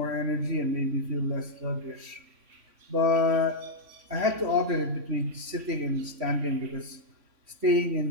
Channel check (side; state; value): left; late; 3.5 ms